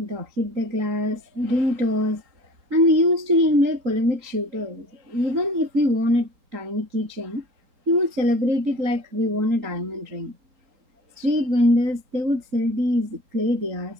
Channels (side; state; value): left; late; 3.9 ms